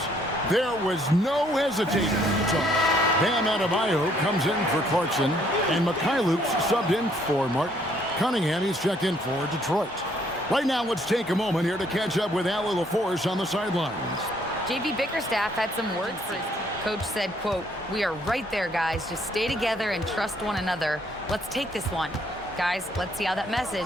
There was no hesitating. Bam Adebayo comes in for Clarkson, and Mikhailuk's subbed in for Mark Cunningham. He's checked in for Detroit. Right now, let's take a moment here to catch up with Allie LaForce on the sidelines. J.B. Bickerstaff had some words for his team. Coach said, quote, "We are right there, guys. Just stay together and trust one another. Let's take this one. Guys, let's see how that message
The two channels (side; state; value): both; normal; correlation 0.66